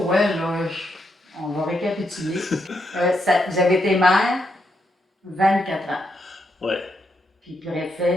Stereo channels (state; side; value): normal; both; correlation 0.80